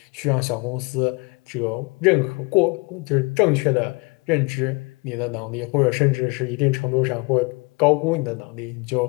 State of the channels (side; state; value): right; quieter; 28.2 dB